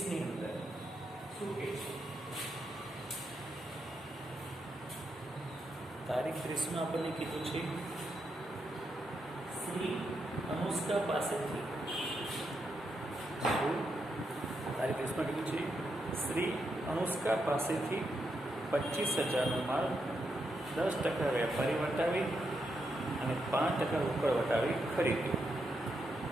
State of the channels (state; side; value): normal; both; correlation 0.82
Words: અંદર શું કહે છે તારીખ 30માં આપણને કીધું છે શ્રી અનુષ્કા પાસેથી તારીખ 30માં કીધું છે શ્રી અનુષ્કા પાસેથી 25,000નો માલ 10% વેપારી વટાવી અને 5% રોકડ વટાવી ખરીદ્યો